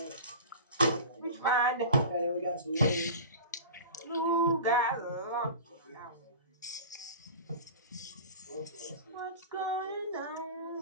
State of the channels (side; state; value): both; inverted; correlation -0.35